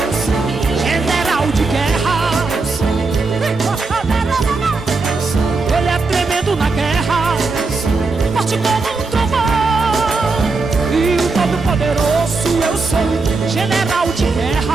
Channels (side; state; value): left; quieter; 3.9 dB